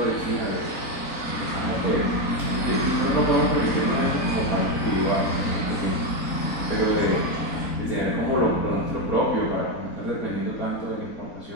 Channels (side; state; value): right; late; 3.9 ms